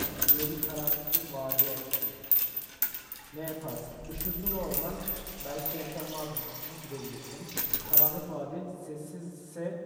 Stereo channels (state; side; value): identical; both; correlation 1.00